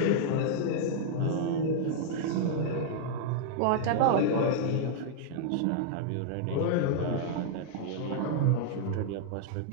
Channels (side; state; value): both; different; correlation -0.01